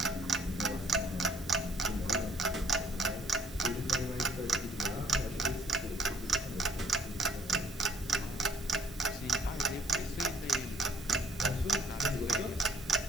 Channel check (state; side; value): normal; both; correlation 0.61